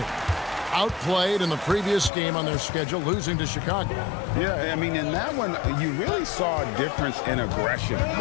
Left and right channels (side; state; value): right; drops out; at 2.1 s